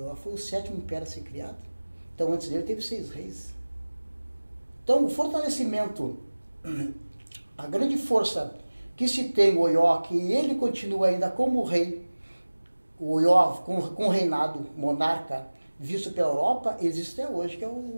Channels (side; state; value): both; inverted; correlation -1.00